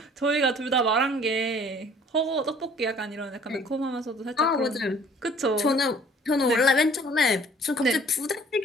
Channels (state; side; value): normal; both; correlation 0.54